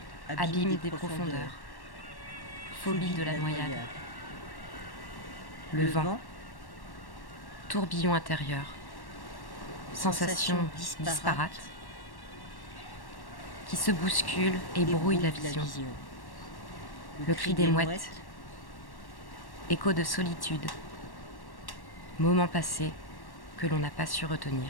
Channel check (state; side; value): late; right; 1.1 ms